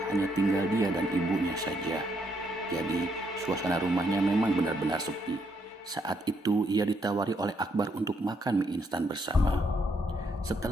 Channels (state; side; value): normal; both; correlation 0.74